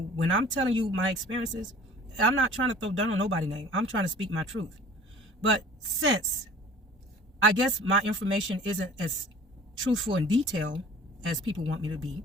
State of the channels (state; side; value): normal; both; correlation 0.46